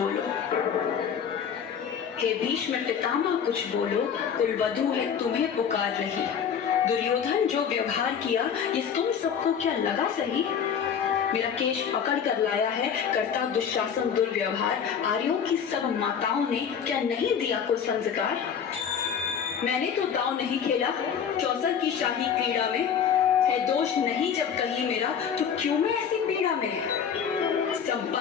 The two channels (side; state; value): right; quieter; 7.6 dB